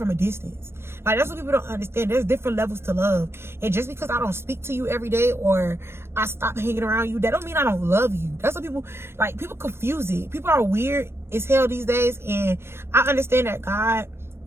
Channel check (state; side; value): late; left; 0.12 ms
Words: a distance. Like, that's what people don't understand. There's different levels to love. And just because I don't speak to you every day or I stop hanging around you, that don't mean I don't love you. That's what people, like, people confuse it. People are weird as hell these days. And I understand that God